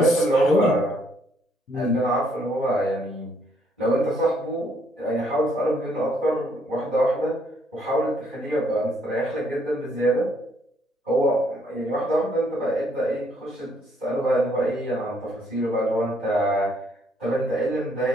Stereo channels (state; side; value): normal; both; correlation 0.69